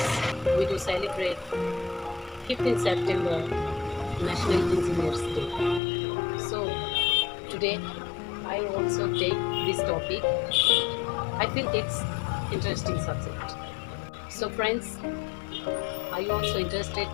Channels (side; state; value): right; drops out; at 5.8 s